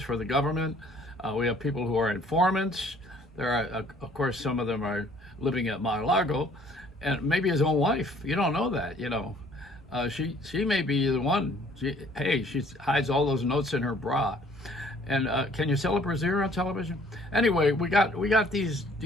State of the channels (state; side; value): normal; both; correlation 0.58